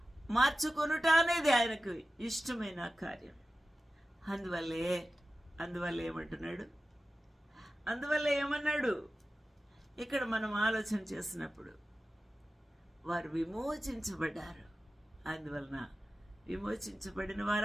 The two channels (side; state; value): both; normal; correlation 0.94